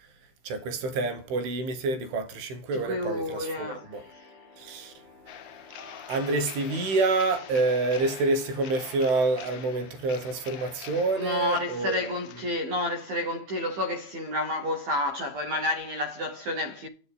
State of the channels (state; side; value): late; left; 15 ms